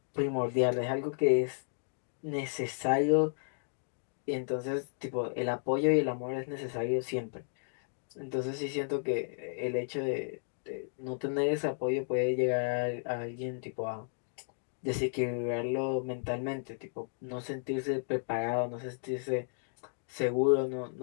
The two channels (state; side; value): silent; right; digital silence